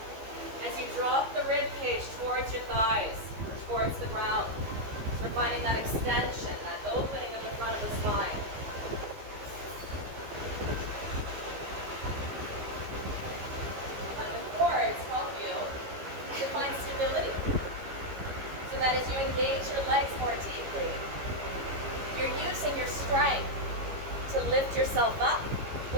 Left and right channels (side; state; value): left; late; 15 ms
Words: As you drop the rib cage towards your thighs, towards the ground, we're finding that extension, that opening of the front of the spine. Let the cords help you to find stability, so that as you engage your legs more deeply, you're using your strength to lift yourself up,